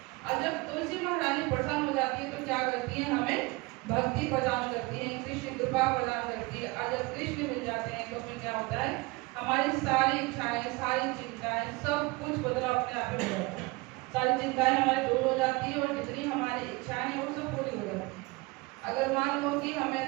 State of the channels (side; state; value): left; quieter; 24.2 dB